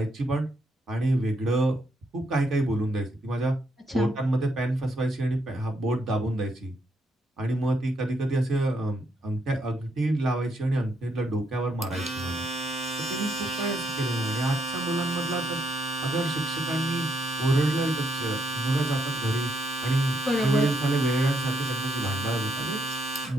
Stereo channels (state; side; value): normal; both; correlation 0.76